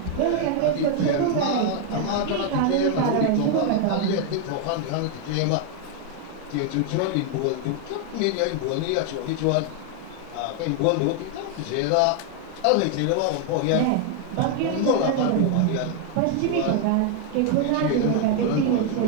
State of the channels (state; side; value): different; both; correlation 0.00